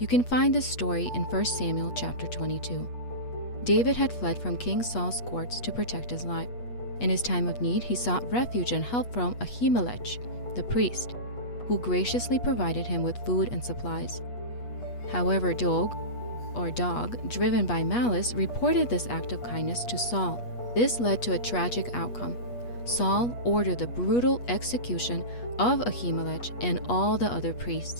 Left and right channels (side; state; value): right; late; 8.3 ms